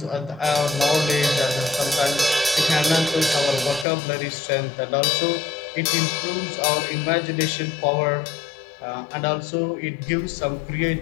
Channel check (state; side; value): drops out; right; at 3.9 s